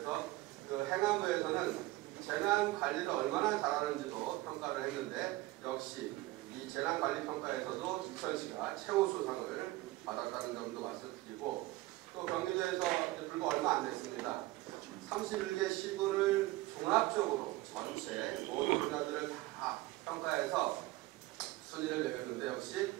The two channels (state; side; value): quieter; left; 18.8 dB